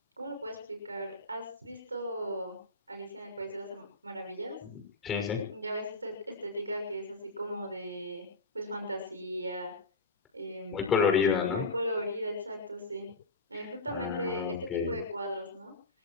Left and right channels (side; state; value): right; quieter; 3.3 dB